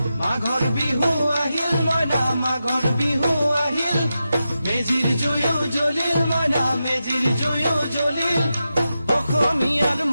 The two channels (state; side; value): inverted; both; correlation -0.90